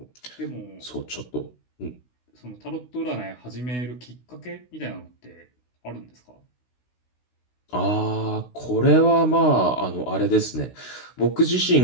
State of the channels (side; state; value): right; late; 16 ms